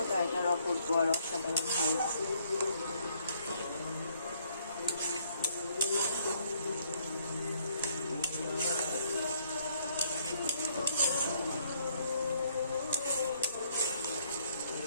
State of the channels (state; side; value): inverted; both; correlation -0.67